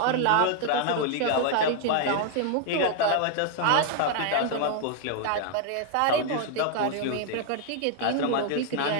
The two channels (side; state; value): both; different; correlation 0.00